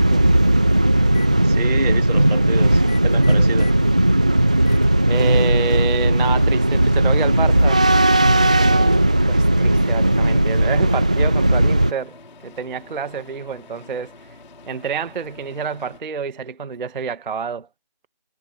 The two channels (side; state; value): both; inverted; correlation -0.89